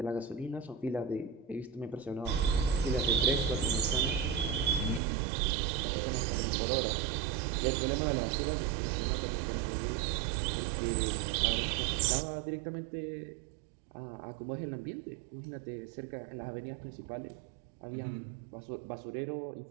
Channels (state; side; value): drops out; left; at 5.0 s